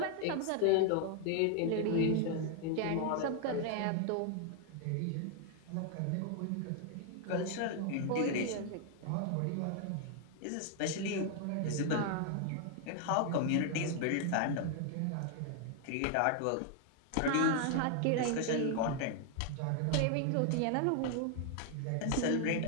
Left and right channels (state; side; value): different; both; correlation 0.00